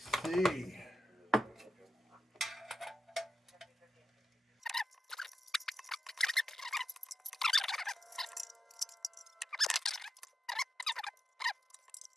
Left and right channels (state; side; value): normal; both; correlation 0.88